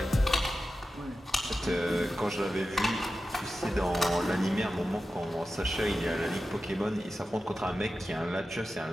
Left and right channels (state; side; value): normal; both; correlation 0.93